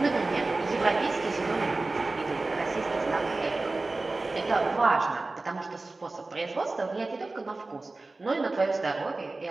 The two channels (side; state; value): left; quieter; 3.3 dB